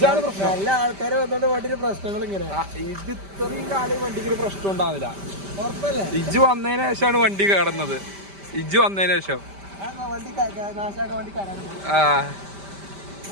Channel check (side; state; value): left; late; 5.1 ms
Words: പ്രശ്നം. നല്ല ആൾക്കാരെ വന്നോണ്ട് വണ്ടിയുടെ പ്രശ്നങ്ങൾ ഇങ്ങനെ. ഇത് ഇത്രയും കാലം വണ്ടിക്ക് പ്രശ്നം ഉണ്ടാവില്ല. ഇജ്ജ് വന്നതിന് ശേഷമാണ് വണ്ടി കടന്നത്. ഇജ്ജ് വന്നതിന് ശേഷം